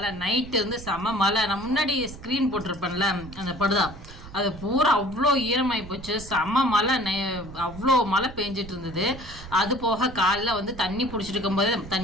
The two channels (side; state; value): right; noise; rumble, 15 dB below the sound